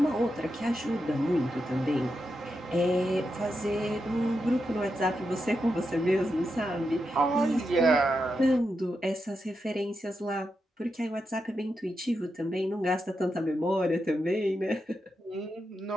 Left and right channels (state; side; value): normal; both; correlation 0.86